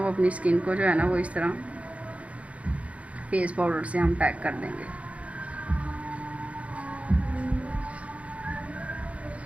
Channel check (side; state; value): left; late; 0.064 ms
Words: अपनी स्किन को जो है ना वो इस तरह फेस पाउडर से हम पैक कर देंगे।